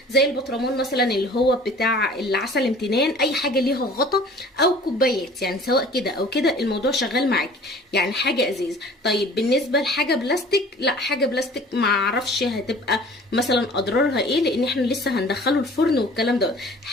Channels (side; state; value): both; normal; correlation 0.47